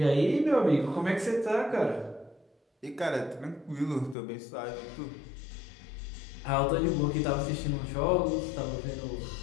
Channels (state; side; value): drops out; right; at 4.2 s